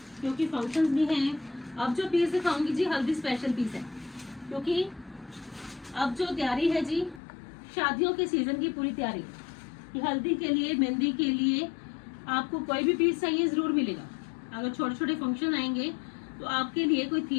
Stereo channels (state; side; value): drops out; right; at 7.2 s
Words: क्योंकि फंक्शंस भी हैं। अब जो पीस दिखाऊंगी जी हल्दी स्पेशल पीस है, क्योंकि अब जो तैयारी है जी शादियों के सीजन की पूरी तैयारी कि हल्दी के लिए मेहंदी के लिए आपको कोई भी पीस चाहिए जरूर मिलेगा। अगर छोटे छोटे फंक्शन आएंगे तो आपके लिए कोई